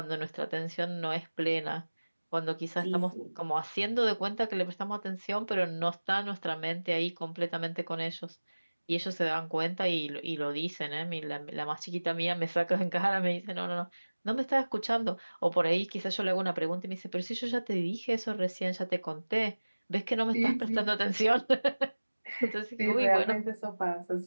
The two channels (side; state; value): both; inverted; correlation -1.00